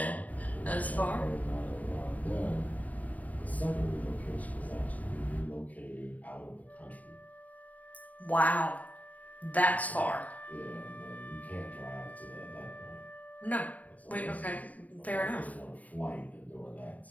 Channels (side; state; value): right; late; 0.073 ms